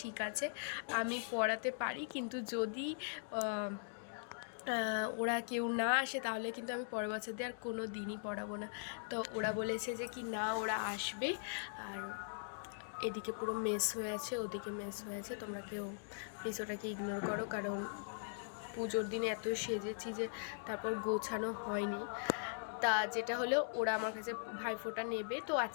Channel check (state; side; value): silent; right; digital silence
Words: ঠিক আছে, আমি পড়াতে পারি, কিন্তু যদি ওরা কেউ না আসে তাহলে কিন্তু আমি পরের বছর দিয়ে আর কোনো দিনই পড়াবো না। তো ওরা বলেছে যে কি না, ওরা আসবে। আর এদিকে পুরো মেস হয়ে আছে, ওদিকে মেস হয়ে আছে, তোমরা কেউ প্লিজ ওটাকে ইগনোর করো। কারণ পুজোর দিনে এত সেজেছি যে তারপর গোছানো হয়নি। তা যেটা হলো, ওরা আমার কাছে ভাইফোঁটা নেবে। তো